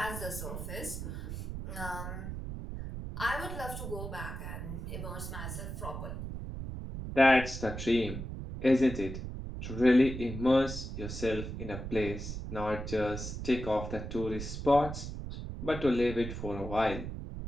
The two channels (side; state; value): right; noise; rumble, 7 dB below the sound